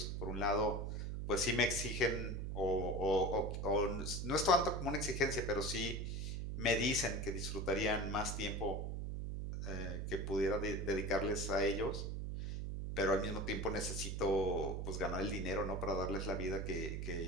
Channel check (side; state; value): right; noise; hum, 3 dB below the sound